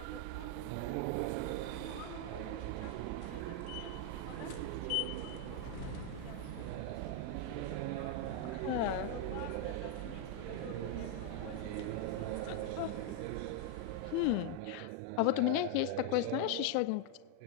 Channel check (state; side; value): different; both; correlation 0.00